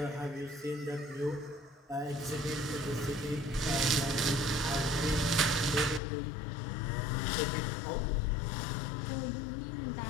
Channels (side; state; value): right; drops out; at 6.0 s